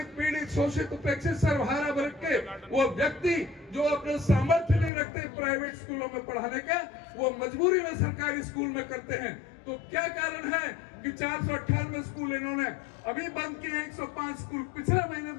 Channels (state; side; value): drops out; right; at 4.9 s